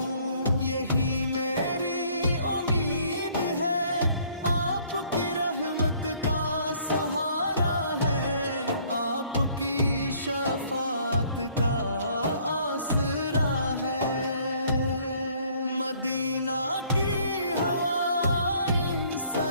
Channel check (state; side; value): inverted; both; correlation -0.60